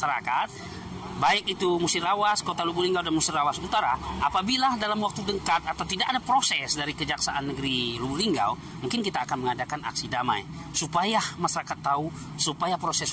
baik itu Musirawas, Kota Lubuk Linggau dan Musirawas Utara, apabila dalam waktu dekat atau tidak ada proses dari Kejaksaan Negeri Lubuk Linggau, mungkin kita akan mengadakan aksi damai supaya masyarakat tahu, supaya proses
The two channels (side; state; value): both; identical; correlation 1.00